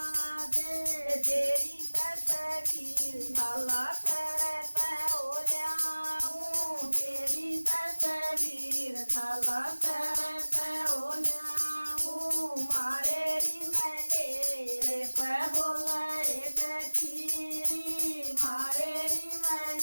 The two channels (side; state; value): both; inverted; correlation -1.00